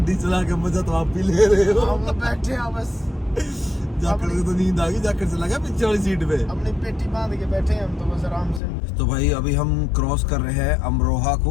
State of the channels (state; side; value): drops out; right; at 8.6 s